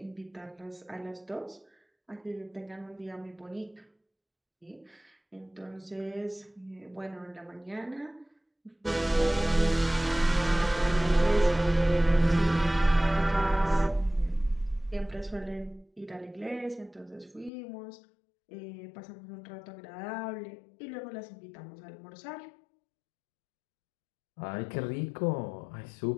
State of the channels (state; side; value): drops out; right; at 17.5 s